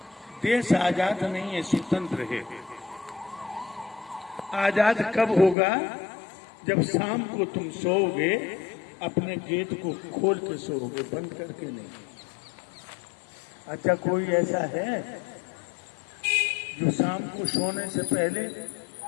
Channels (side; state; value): right; drops out; at 5.6 s